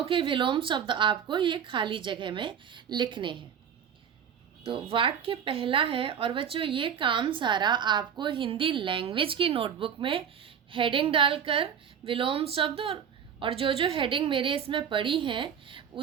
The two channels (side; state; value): left; quieter; 8.0 dB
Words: के विलोम शब्द आपको ये खाली जगह में लिखने हैं। तो वाक्य पहला है, और बच्चों ये काम सारा आपको हिंदी लैंग्वेज की नोटबुक में हेडिंग डालकर विलोम शब्द और जो जो हेडिंग मेरे इसमें पड़ी हैं